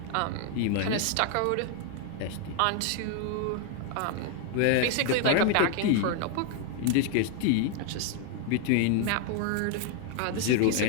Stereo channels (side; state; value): both; different; correlation 0.00